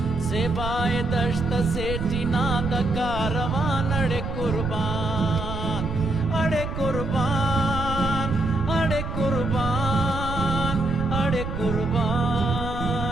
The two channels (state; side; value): noise; right; rumble, 5 dB below the sound